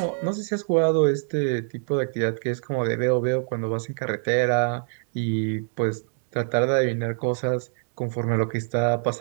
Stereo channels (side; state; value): left; silent; digital silence